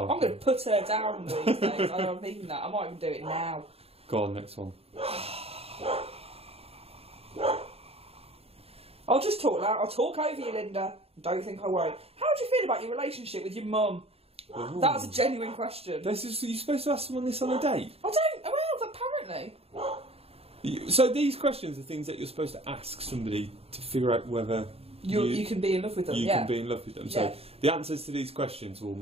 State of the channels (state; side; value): late; left; 0.29 ms